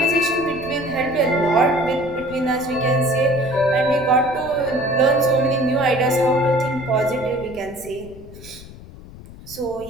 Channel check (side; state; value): left; noise; rumble, 17 dB below the sound